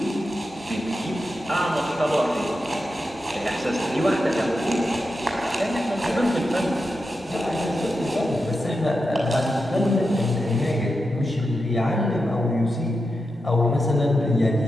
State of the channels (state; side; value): normal; both; correlation 0.89